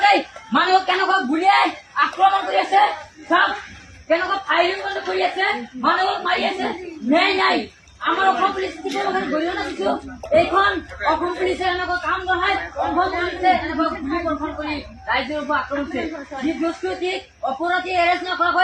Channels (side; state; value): both; identical; correlation 1.00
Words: মানুহক কেনেকুৱা গুলিয়াই আক্ৰমণ কৰি আছে, চব কেনেকুৱা ফায়াৰিং কৰি আছে, মানুহক মাৰি আছে। ন্যায় নাই। আমাৰ অসম পুলিচ গৰিহণা দিছো। এইখন অসম পুলিচে এনেকুৱা কাম নহয়, অসম পুলিচে এনেকুৱা গুলি বৰ্ষণ কৰি ৰাইজৰ ওপৰত আক্ৰমণ কৰিছে। যি দুষ্কৃতিক অপৰাধী এৰেষ্ট